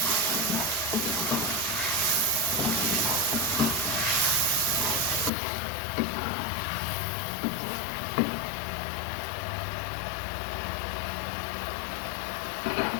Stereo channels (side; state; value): right; drops out; at 5.3 s